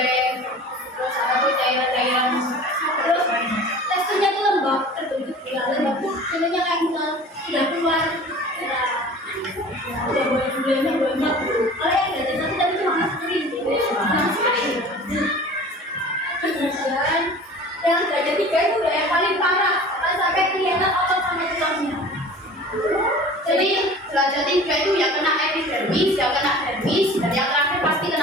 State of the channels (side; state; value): both; normal; correlation 0.42